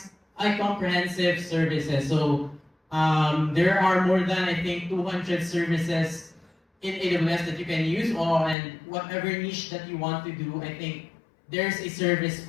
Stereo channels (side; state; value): right; drops out; at 8.6 s